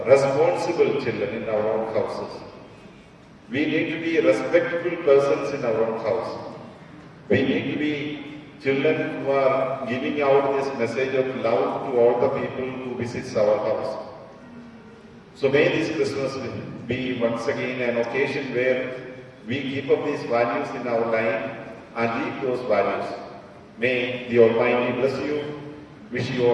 responsible children in our own houses. We need to be respectful persons in our own house. We need to be children who are giving out this message of love to all the people who visit our house. So may this Christmas be once again an occasion where we keep up these values in our life and live those values. May the Almighty bless you. Wish you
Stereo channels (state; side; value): identical; both; correlation 1.00